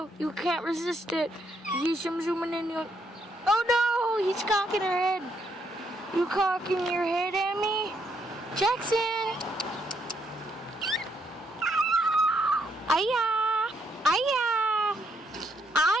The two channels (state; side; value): normal; both; correlation 0.74